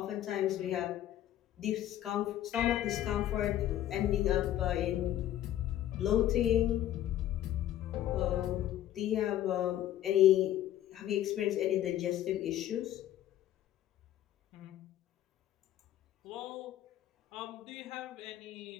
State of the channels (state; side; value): quieter; right; 12.4 dB